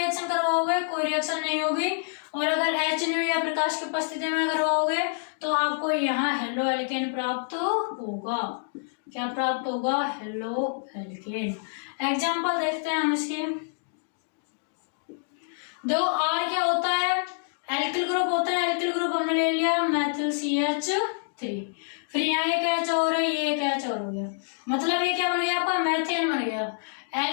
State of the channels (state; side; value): silent; right; digital silence